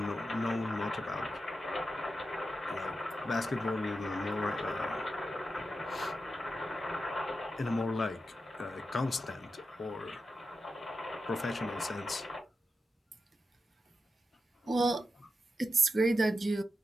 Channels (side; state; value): both; normal; correlation 0.89